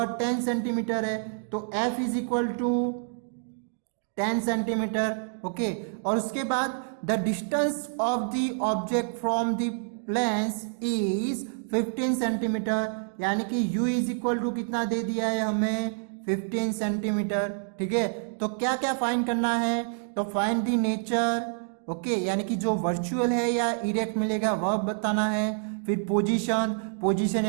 10 सेंटीमीटर है। तो f is equal to 10 centimetre. Okay, और उसके बाद the distance of the object from the lens is 15 centimetre, यानी कि u इज इक्वल टू कितना दे दिया है हमें 15 सेंटीमीटर। ठीक है, तो क्या क्या फाइंड करना है, तो फाइंड द नेचर। ओके, यानी कि जो वर्चुअल है या इरेक्ट मिलेगा वह बताना है। फिर पोजीशन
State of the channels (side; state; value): left; silent; digital silence